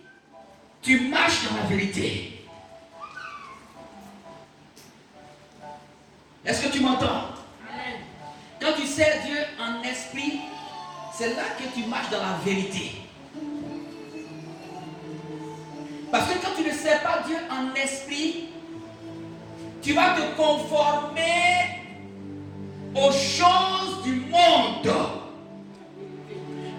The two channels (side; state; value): both; identical; correlation 1.00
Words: tu marches dans la vérité. Est-ce que tu m'entends? Quand tu sers Dieu en esprit, c'est là que tu marches dans la vérité. Parce que quand tu ne sers pas Dieu en esprit, tu vas te conformer aux choses du monde.